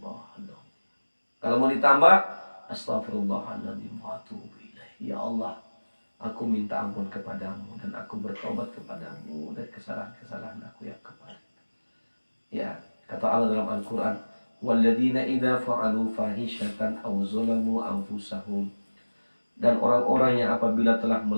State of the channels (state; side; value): inverted; both; correlation -1.00